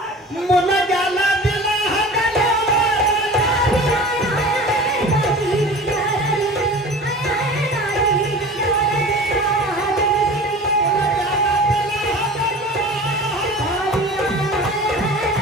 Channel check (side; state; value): both; normal; correlation 0.38